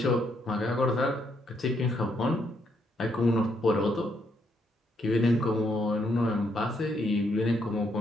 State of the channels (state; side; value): normal; both; correlation 0.74